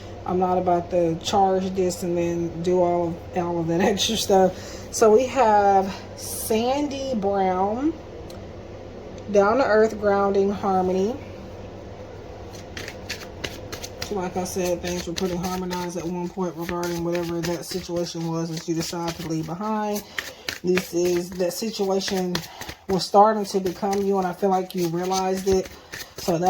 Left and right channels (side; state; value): both; identical; correlation 1.00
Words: I'm not about to charge this and then do all of that extra stuff. So we have Sandy Brown, Down to Earth, Grounding, Harmony. So like I said, things were pretty harmonized at one point regarding whatever that situation was that you decided to leave behind. This is that situation was starting to become you, and I feel like you realized it. So